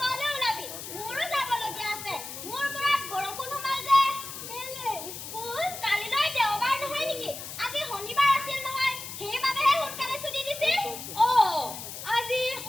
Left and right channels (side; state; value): left; noise; hiss, 9 dB below the sound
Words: ওলাবি। মোৰো যাবলগীয়া আছে। মোৰ মূৰত বৰষুণ সোমাল যে। কেলে স্কুল? কালিলৈ দেওবাৰ নহয় নেকি? আজি শনিবাৰ আছিল নহয়। সেইবাবেহে সোনকালে ছুটি দিছিল। আজি